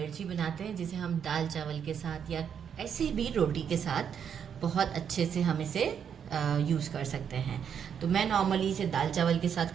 बनाते हैं जिसे हम दाल चावल के साथ या ऐसे भी रोटी के साथ बहुत अच्छे से हम इसे यूज़ कर सकते हैं। तो मैं नॉर्मली इसे दाल चावल के साथ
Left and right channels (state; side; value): quieter; left; 7.9 dB